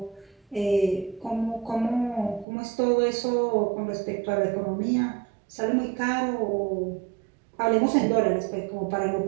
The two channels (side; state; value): left; drops out; at 2.5 s